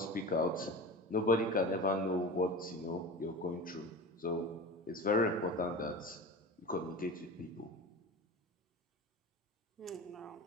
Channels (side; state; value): both; normal; correlation 0.31